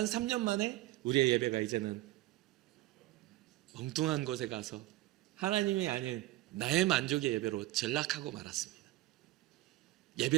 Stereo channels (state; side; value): quieter; left; 17.0 dB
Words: 3년 만에 우리의 예배가 이제는 엉뚱한 곳에 가서 하나님이 아닌 나의 만족의 예배로 전락하고 말았습니다.